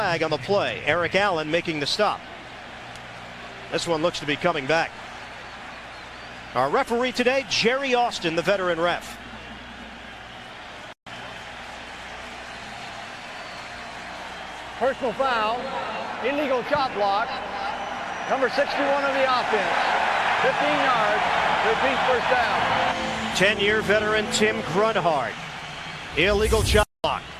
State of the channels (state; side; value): identical; both; correlation 1.00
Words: on the play. Eric Allen making the stop. This one looks to be coming back. Our referee today, Jerry Austin, the veteran ref. Personal foul, illegal chop block, number 61 of the offense, 15 yards, repeat first down. 10-year veteran Tim Grunhard, illegal chop block.